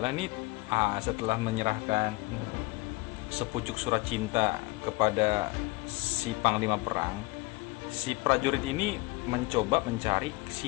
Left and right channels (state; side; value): quieter; right; 23.8 dB